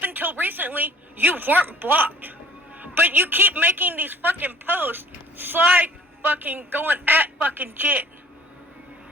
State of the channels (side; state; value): both; normal; correlation 0.53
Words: until recently, you weren't blocked. But you keep making these fucking posts, slide fucking going at fucking Jen.